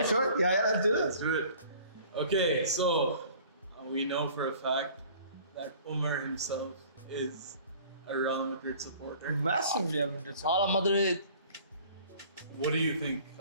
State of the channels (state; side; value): inverted; both; correlation -0.50